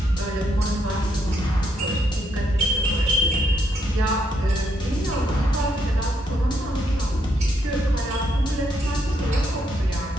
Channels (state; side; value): normal; both; correlation 0.76